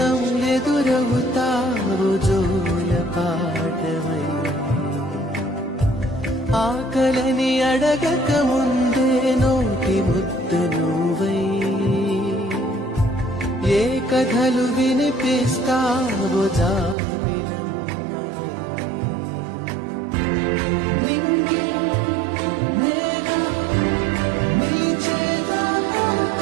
ఎదురవుతావు జోల పాటవై ఆకలని అడగక ముందే నోటి ముద్దు నువ్వై ఏ కథలు వినిపిస్తావు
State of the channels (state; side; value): drops out; left; at 16.9 s